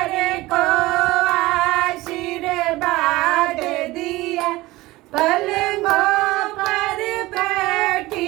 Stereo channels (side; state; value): left; quieter; 19.3 dB